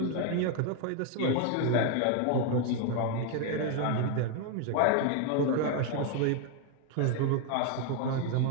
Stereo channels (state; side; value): different; both; correlation 0.01